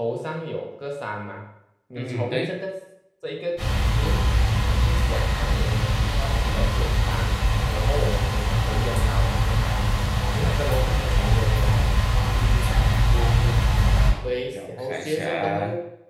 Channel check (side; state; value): both; identical; correlation 1.00